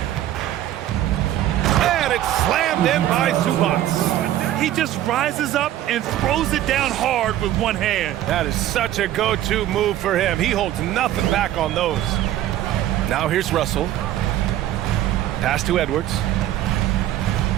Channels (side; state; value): left; quieter; 13.0 dB